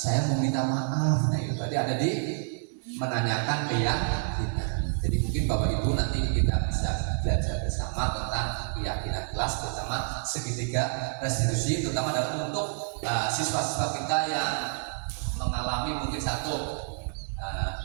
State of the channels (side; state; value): left; silent; 59 dB below the other